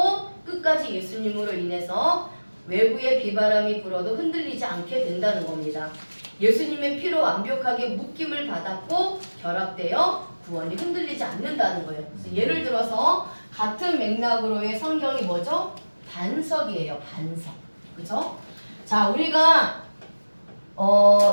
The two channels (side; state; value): both; inverted; correlation -1.00